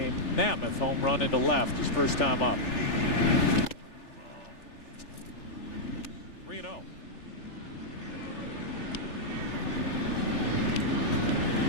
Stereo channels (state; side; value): late; right; 3.4 ms